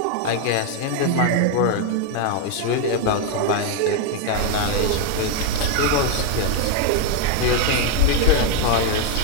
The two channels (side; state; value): both; different; correlation 0.01